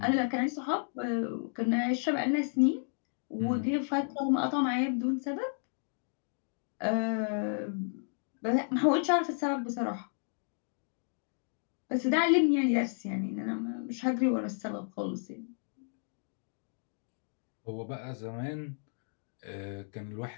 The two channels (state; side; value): silent; right; digital silence